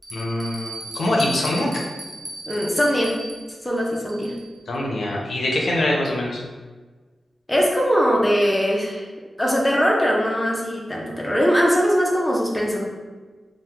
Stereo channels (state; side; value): normal; both; correlation 0.93